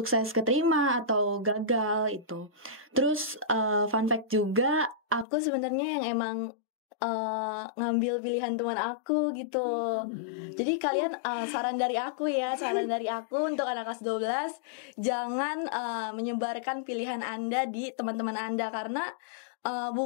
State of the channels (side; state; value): right; drops out; at 5.2 s